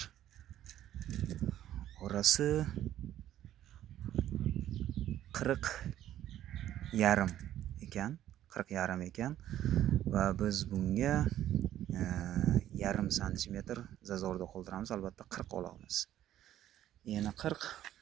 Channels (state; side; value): quieter; left; 12.2 dB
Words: Orasi 40,5 ekan. 40,5 ekan. Va biz bunga yarim santimetr zazorda qoldiramiz. Albatta 40 olamiz. Yana 40.